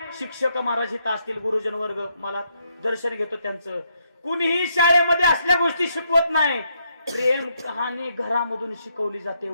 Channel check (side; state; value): both; inverted; correlation -0.76